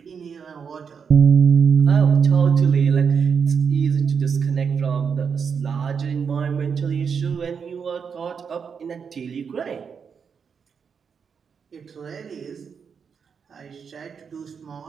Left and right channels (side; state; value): left; quieter; 6.4 dB